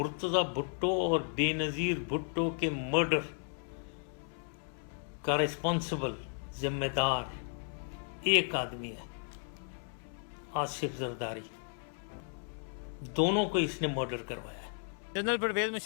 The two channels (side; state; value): right; silent; 55 dB below the other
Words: भुट्टो और बेनज़ीर भुट्टो के मर्डर का रिस्पॉन्सिबल जिम्मेदार एक आदमी है, आसिफ जरदारी। दोनों को इसने मर्डर करवाया है। जनरल परवेज